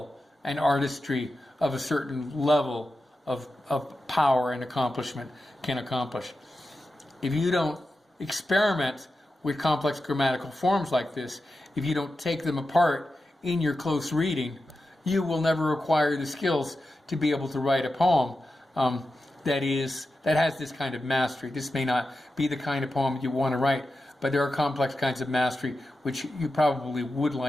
and artistry of a certain level of power and accomplishment can accomplish. If you don't experiment with complex grammatical forms like this, if you don't take them apart in your close reading, you will never acquire the skills to be able to write a poem that has this kind of mastery. This may not be the kind of poem you want to write, but there are complex kinds of mastery which you probably would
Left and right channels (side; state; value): both; normal; correlation 0.91